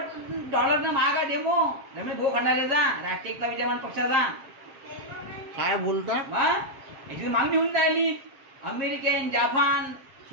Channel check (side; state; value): left; late; 7.6 ms